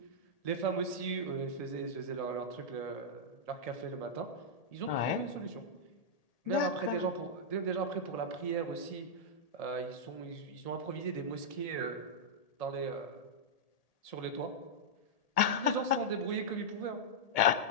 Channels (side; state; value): right; late; 1.8 ms